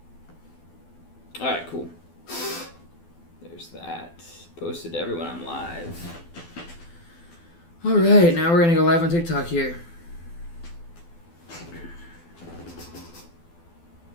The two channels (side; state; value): right; late; 12 ms